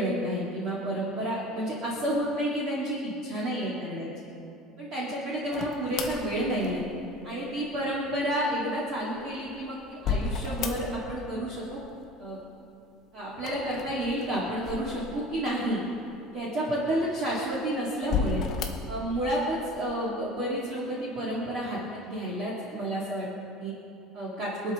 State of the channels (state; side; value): normal; both; correlation 0.40